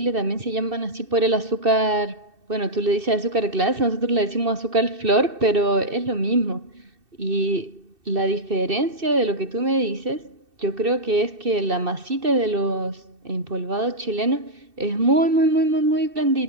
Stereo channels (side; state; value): left; late; 2.7 ms